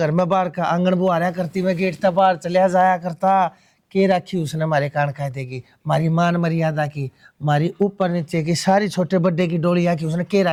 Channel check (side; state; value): both; identical; correlation 1.00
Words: में बाहर का आंगन बुहारा करती मैं गेट तक बाहर चलिया जाया करता। के रखी उसने मारे कान खाए देगी, मारी मान मर्यादा की, मारी ऊपर नीचे की सारी छोटे बड्डे की डोलिया की उसने के